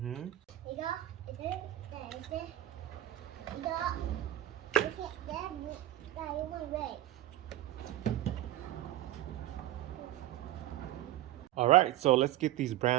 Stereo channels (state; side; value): quieter; left; 14.1 dB